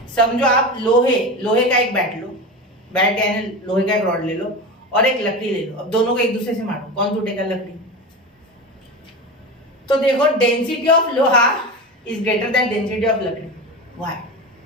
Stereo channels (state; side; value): normal; both; correlation 0.25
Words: समझो आप लोहे का एक बैट लो, बैट यानी लोहे का एक रॉड ले लो और एक लकड़ी ले लो। अब दोनों को एक दूसरे से मारो, कौन टूटेगा, लकड़ी। तो देखो डेंसिटी ऑफ लोहा is greater than density of लकड़ी। व्हाई?